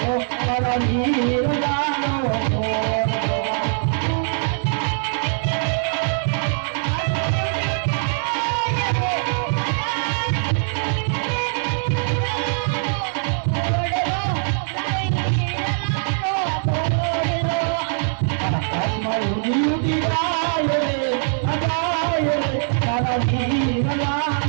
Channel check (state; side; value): silent; left; 64 dB below the other